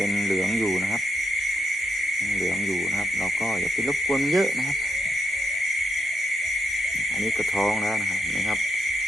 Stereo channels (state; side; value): normal; both; correlation 0.81